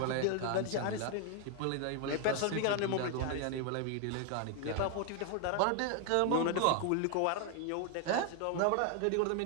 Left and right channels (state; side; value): different; both; correlation 0.00